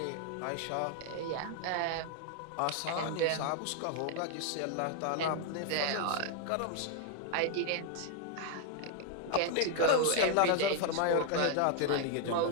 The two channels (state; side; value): different; both; correlation 0.00